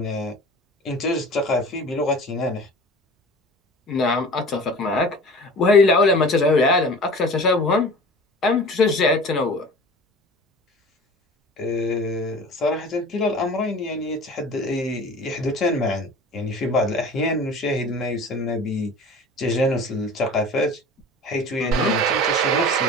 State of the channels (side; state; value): both; normal; correlation 0.40